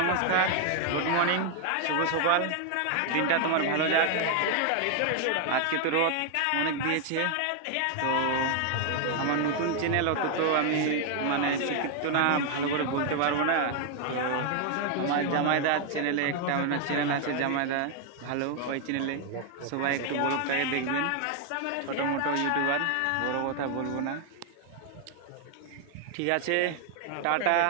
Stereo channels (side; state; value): both; different; correlation 0.00